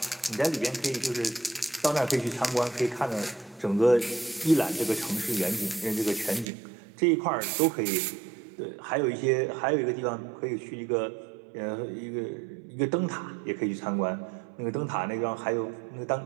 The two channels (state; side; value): drops out; left; at 6.5 s